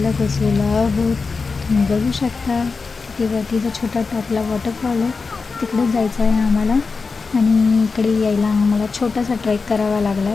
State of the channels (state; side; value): quieter; right; 4.5 dB